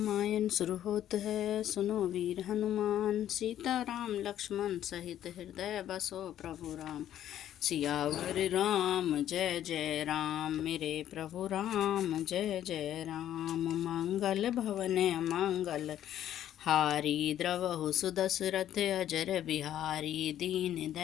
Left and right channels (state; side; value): quieter; right; 11.4 dB